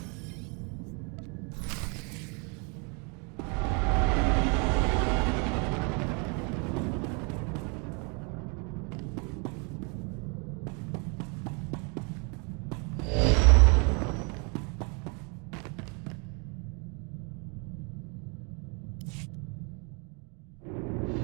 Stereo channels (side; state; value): left; quieter; 34.1 dB